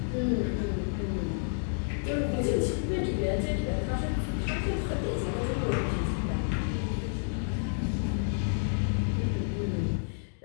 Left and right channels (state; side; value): silent; right; digital silence